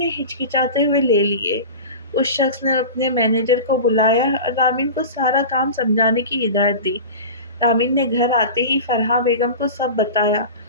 ہچکچاتے ہوئے لے لیے۔ اس شخص نے اپنے مینیجر کو بلایا اور رامین کو سارا کام سمجھانے کی ہدایت دی۔ رامین نے گھر آتے ہی فرحہ بیگم کو سب بتایا۔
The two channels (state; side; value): inverted; both; correlation -0.32